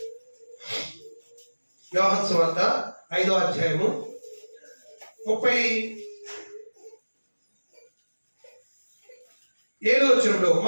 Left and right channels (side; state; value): both; inverted; correlation -1.00